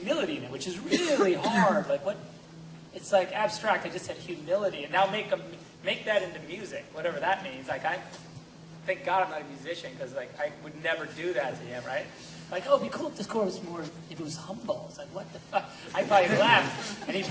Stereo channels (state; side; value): identical; both; correlation 1.00